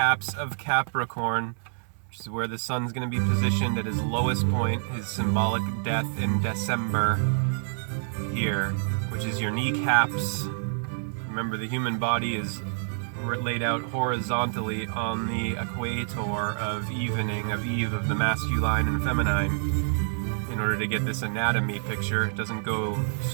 of Capricorn, which is where the sun's going to be positioned at his lowest point, his symbolic death in December here, which is your kneecaps. Remember, the human body is laid out horizontally on the equator of evening, of Eve, of the masculine and feminine, in order to get this anatomy picture. It doesn't go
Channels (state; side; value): silent; left; 60 dB below the other